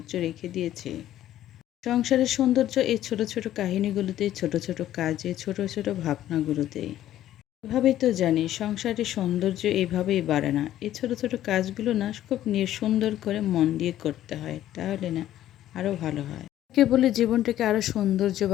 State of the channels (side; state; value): right; quieter; 12.7 dB